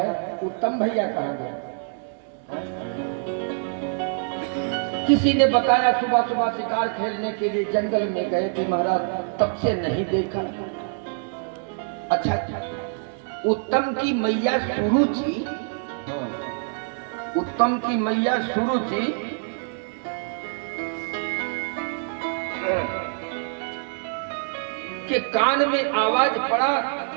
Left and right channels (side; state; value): left; silent; 62 dB below the other